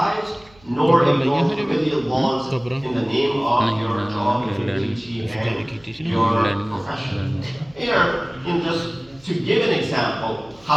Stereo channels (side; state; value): right; noise; hum, 28 dB below the sound